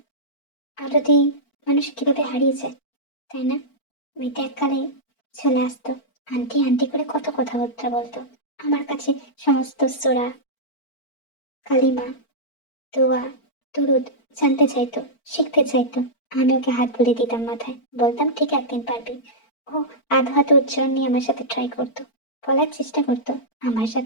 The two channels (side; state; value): right; late; 4.4 ms